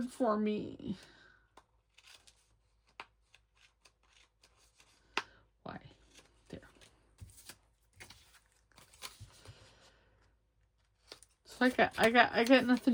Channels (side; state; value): both; identical; correlation 1.00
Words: for me. Why? There. So I got